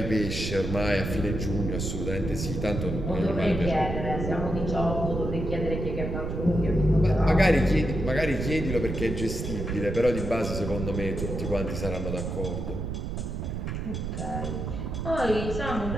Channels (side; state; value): right; noise; rumble, 4 dB below the sound